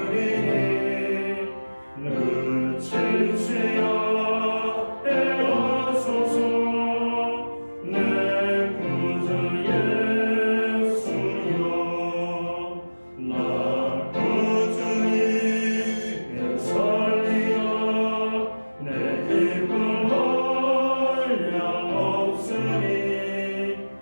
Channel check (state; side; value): inverted; both; correlation -1.00